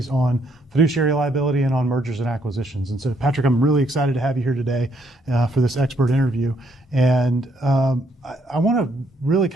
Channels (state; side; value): normal; both; correlation 0.71